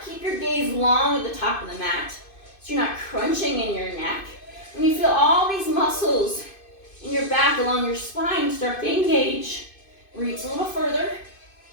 Keep your gaze long at the top of the mat so you're not crunching in your neck. And you feel all these muscles in your back along your spine start to engage. Reach a little further.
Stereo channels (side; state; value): right; late; 2.5 ms